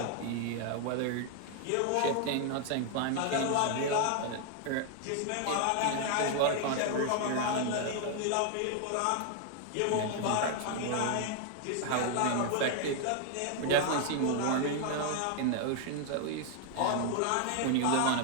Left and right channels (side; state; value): both; different; correlation 0.00